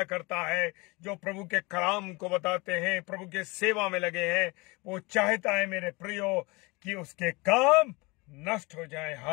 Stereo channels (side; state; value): right; quieter; 25.6 dB